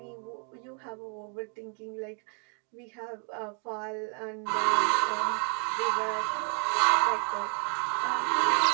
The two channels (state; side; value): quieter; left; 39.2 dB